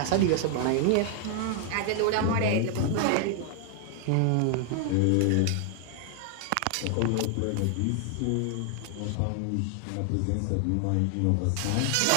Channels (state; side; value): different; both; correlation 0.00